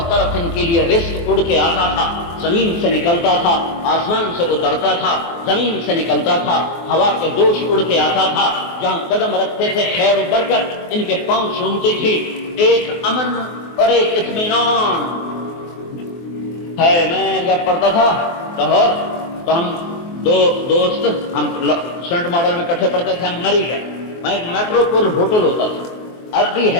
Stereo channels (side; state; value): right; late; 24 ms